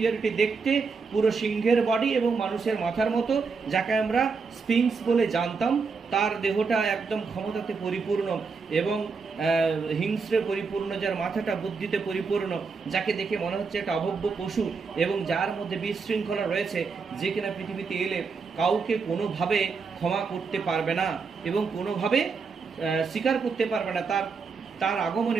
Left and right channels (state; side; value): quieter; left; 4.9 dB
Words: দেখতে পুরো সিংহের বডি এবং মানুষের মাথার মতো, যাকে আমরা স্ফিংস বলে জানতাম, তার দেহটা একদম ক্ষমতাতে পরিপূর্ণ এবং হিংস্রে পরিপূর্ণ, যার মাথাটা বুদ্ধিতে পরিপূর্ণ, যাকে দেখে মনে হচ্ছে একটা অভব্য পশু, এবং যার মধ্যে বিশৃঙ্খলা রয়েছে, যে কিনা পৃথিবীতে এলে কাউকে কোনোভাবে ক্ষমা করতে পারবে না এবং কোনোভাবে স্বীকার করতে পারবে না। তার